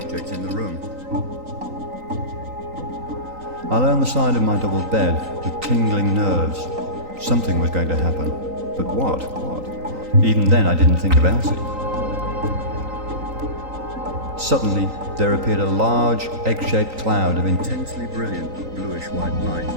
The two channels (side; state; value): left; late; 3.9 ms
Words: in the room. I lay on the side of my double bed with tingling nerves. Something was going to happen, but what? Even then I didn't think of Elsie. Suddenly there appeared a large, egg-shaped cloud of intensely brilliant bluish-white light.